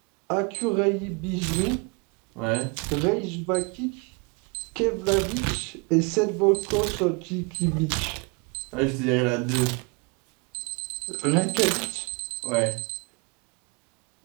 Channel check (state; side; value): quieter; left; 31.2 dB